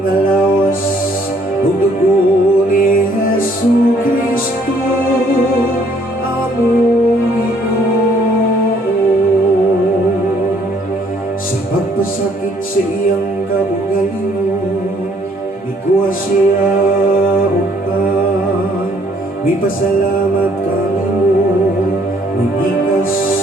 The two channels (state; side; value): normal; both; correlation 0.63